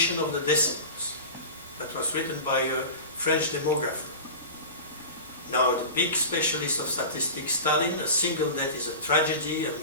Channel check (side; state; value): both; inverted; correlation -0.31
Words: of the decimals. That was written by a French demographer. Now, the big specialist of statistics, Stalin, a single death is a tragedy, a